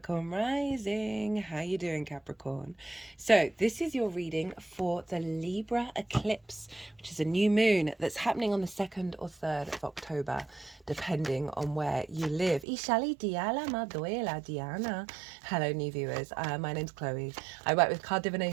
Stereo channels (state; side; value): drops out; left; at 12.7 s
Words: rising. How you doing, Capricorn? So this is your reading for the Libra eclipse, which is a new moon that's happening on the 2nd or 3rd of October, depending on where you live. Ishali diala maduela Diana. Hello, new viewers. My name's Chloe. I work with card